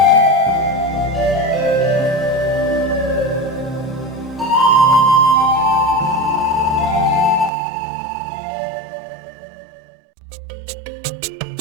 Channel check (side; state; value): left; drops out; at 7.5 s